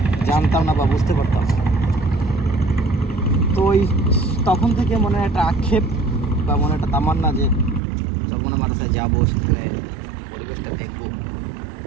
জানতাম না বা বুঝতে পারতাম না। তো ওই তখন থেকে মনে একটা আক্ষেপ বা মনে একটা তামান্না যে চরমোনাই মাদ্রাসায় যাবো, সেখানে পরিবেশটা দেখবো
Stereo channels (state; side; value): drops out; left; at 7.8 s